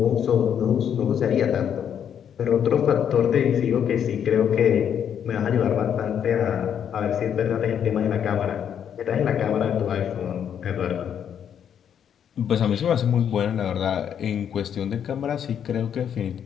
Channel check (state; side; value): quieter; right; 8.6 dB